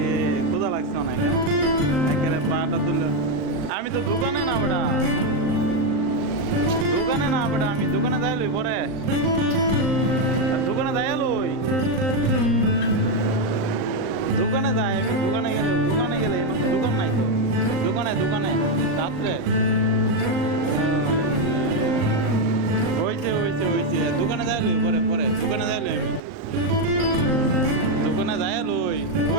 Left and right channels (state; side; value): late; left; 38 ms